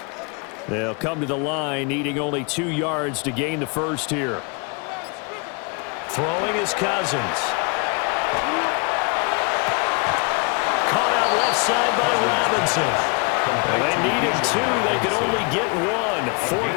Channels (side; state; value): right; quieter; 33.1 dB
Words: They'll come to the line, needing only 2 yards to gain the first here. Throwing is Cousins. Caught out side by Robinson. And they needed 2. They could only get 1.